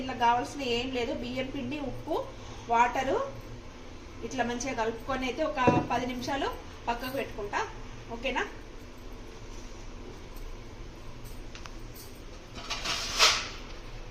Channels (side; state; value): both; identical; correlation 1.00